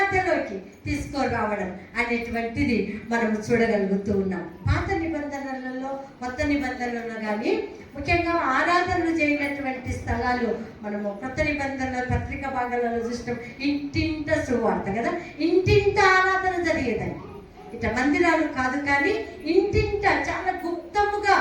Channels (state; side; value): identical; both; correlation 1.00